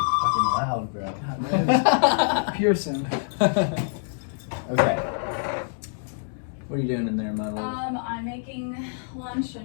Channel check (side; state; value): right; silent; digital silence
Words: fucking loud, bro. Pearson. Okay. What are you doing in there, my love? I'm making lunch